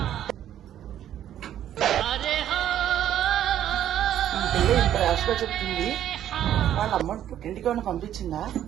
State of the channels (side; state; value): left; quieter; 11.1 dB